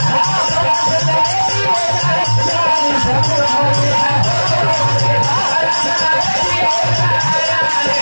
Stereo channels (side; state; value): both; inverted; correlation -1.00